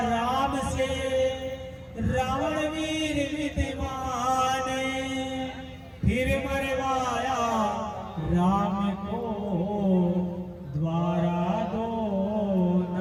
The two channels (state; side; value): identical; both; correlation 1.00